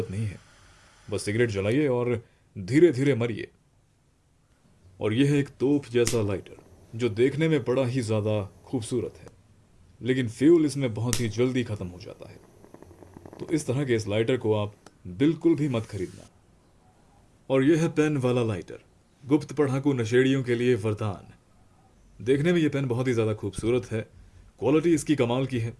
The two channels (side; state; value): both; identical; correlation 1.00